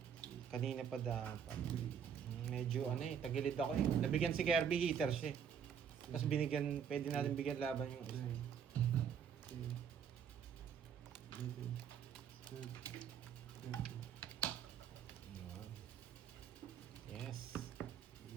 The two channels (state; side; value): quieter; left; 7.8 dB